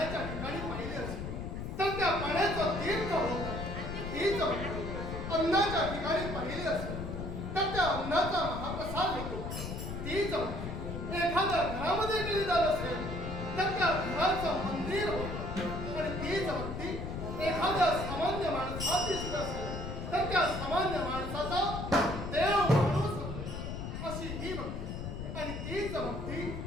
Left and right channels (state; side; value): noise; left; rumble, 6 dB below the sound